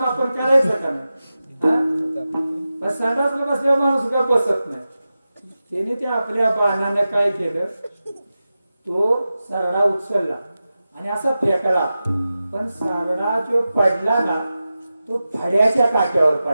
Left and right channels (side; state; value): both; inverted; correlation -0.93